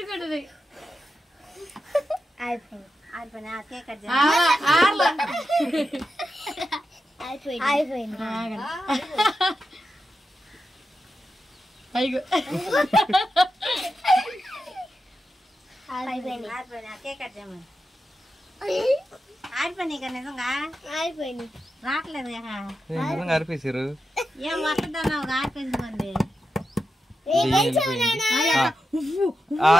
అయిపోయింది. కేక్ కట్ అయిపోయింది. కేక్ కట్ చేయమని. ఆడిపోయినాయి కదా, నిజంగా అయిపోయింది. రావట్లేదు అరిపేసారు. ఏం వస్తుందన్నావు, ఆడిపోయింది.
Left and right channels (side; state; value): both; normal; correlation 0.89